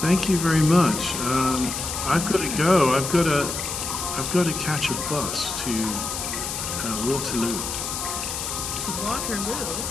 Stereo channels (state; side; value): noise; left; hiss, 4 dB below the sound